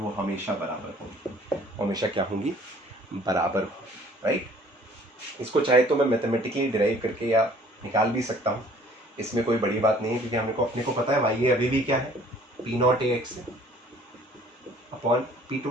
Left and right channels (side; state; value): both; normal; correlation 0.55